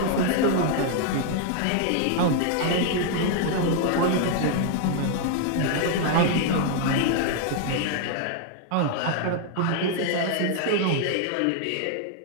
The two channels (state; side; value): different; both; correlation 0.00